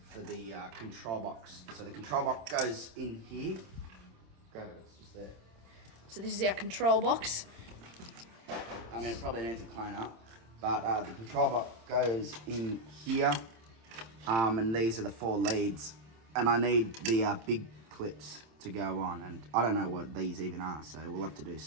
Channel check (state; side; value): late; left; 27 ms